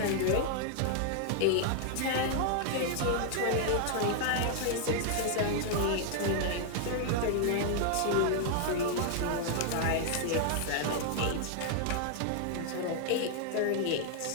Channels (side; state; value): both; different; correlation 0.00